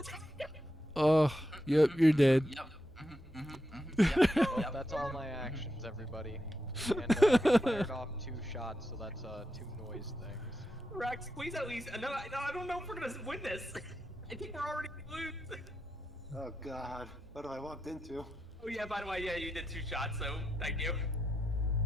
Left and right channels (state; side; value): normal; both; correlation 0.86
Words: Oh. Yep, you're dead. Yep. Well, that's all my actions, everybody. And I fired off 2 shots, so that's 2 noise things. Rex, please at least. No, I don't know if we're gonna win this. I think we're already gonna lose. Oh God, what have I walked into? Oh yeah, by the way, yeah, you did 2 shots, so thank you.